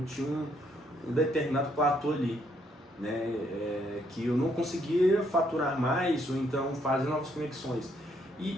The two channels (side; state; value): both; normal; correlation 0.71